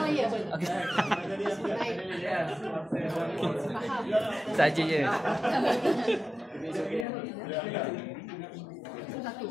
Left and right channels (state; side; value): drops out; right; at 7.1 s